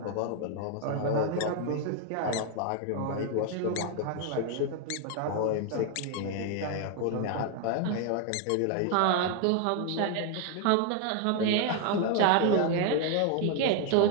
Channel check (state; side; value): different; both; correlation 0.00